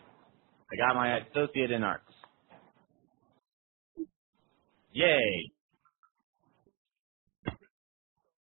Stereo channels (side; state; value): left; quieter; 28.7 dB